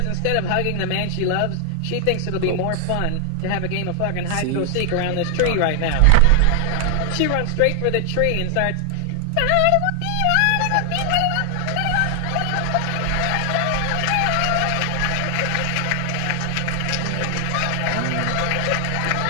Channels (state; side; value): different; both; correlation 0.00